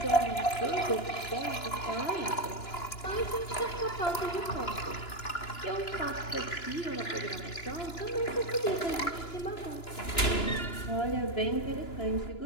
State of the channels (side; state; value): right; late; 2.9 ms